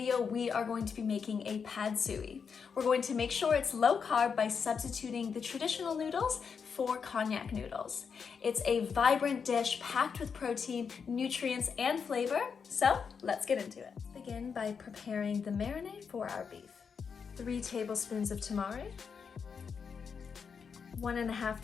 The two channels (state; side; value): quieter; right; 6.2 dB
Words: we are going to be making a pad suey. We're going to make sure it's low carb by substituting the traditional noodles for Konjac noodles. It's a vibrant dish packed with protein, nutrients, and flavor. So let's get into it. Let's begin by preparing the marinade for our beef. 3 tablespoons of tamari, 1.5